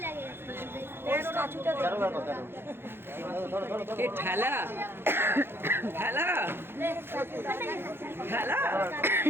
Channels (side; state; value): left; late; 0.11 ms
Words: 13 দেখো 13 ধরো ধরো ধরো এ ঠেলা ঠেলা ঠেলা।